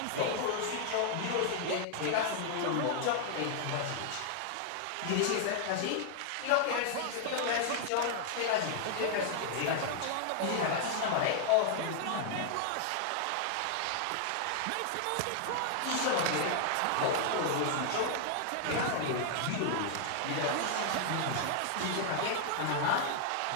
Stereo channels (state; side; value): different; both; correlation 0.00